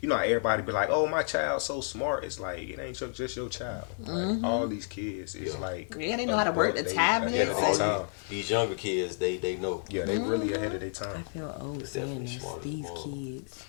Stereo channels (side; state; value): right; silent; 57 dB below the other